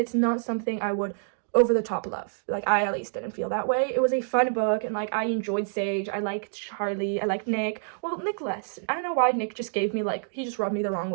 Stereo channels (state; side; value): silent; left; digital silence